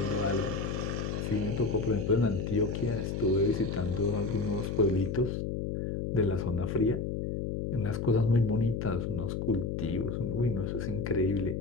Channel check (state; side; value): noise; left; hum, 2 dB below the sound